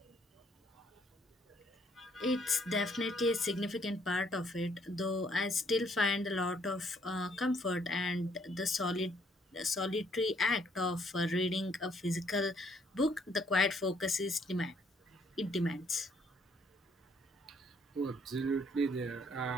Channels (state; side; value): normal; both; correlation 0.67